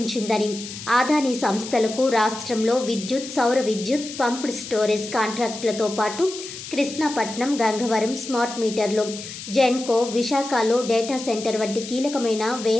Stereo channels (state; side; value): noise; left; hiss, 11 dB below the sound